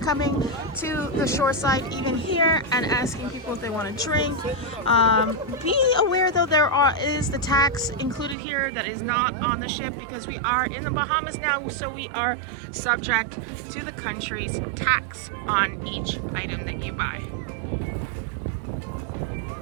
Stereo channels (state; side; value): drops out; left; at 8.3 s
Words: to the shoreside even here and asking people if they want to drink. Be aware though, is the tax included here that is not on the ship, because we are in the Bahamas now, so we are subject to the country's tax on each item that you buy.